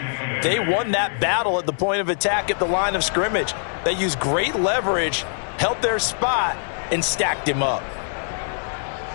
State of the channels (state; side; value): silent; right; digital silence